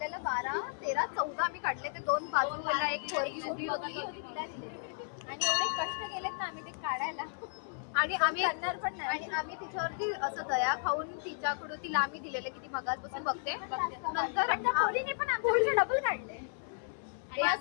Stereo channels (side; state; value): right; silent; 55 dB below the other